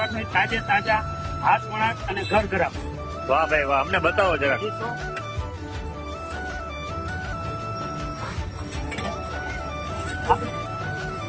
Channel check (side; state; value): both; identical; correlation 1.00